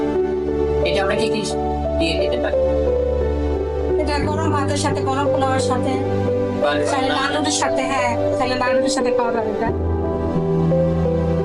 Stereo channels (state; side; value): identical; both; correlation 1.00